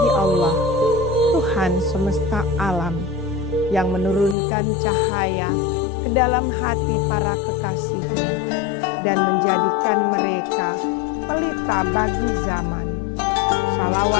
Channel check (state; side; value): drops out; right; at 4.4 s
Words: Allah, Tuhan semesta alam, yang menurunkan cahaya ke dalam hati para kekasihnya dan menjadikan mereka pelita bagi zaman.